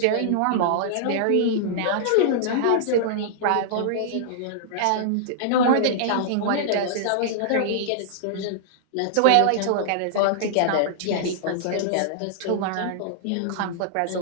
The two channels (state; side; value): different; both; correlation -0.01